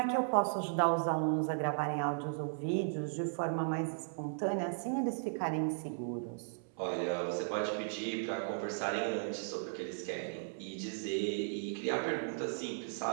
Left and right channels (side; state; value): left; silent; 54 dB below the other